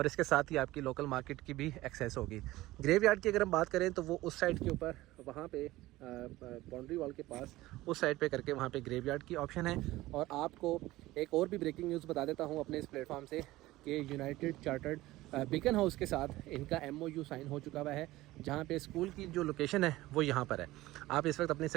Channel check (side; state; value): left; quieter; 17.6 dB